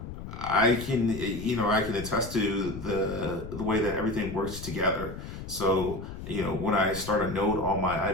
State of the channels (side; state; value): left; noise; rumble, 10 dB below the sound